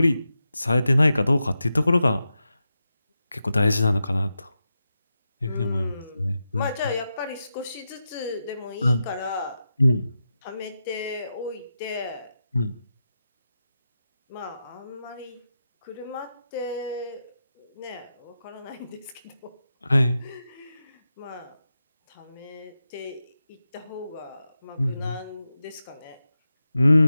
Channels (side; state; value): both; inverted; correlation -0.90